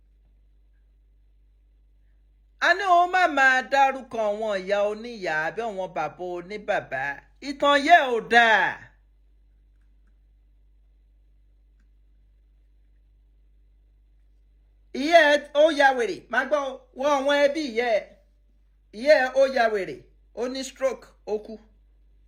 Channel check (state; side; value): identical; both; correlation 1.00